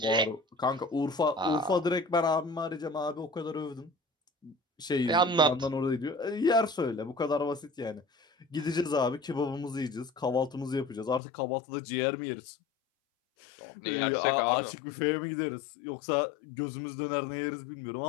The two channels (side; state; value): right; drops out; at 11.2 s